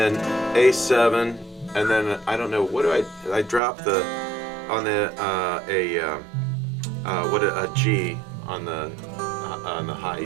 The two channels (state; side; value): drops out; left; at 3.6 s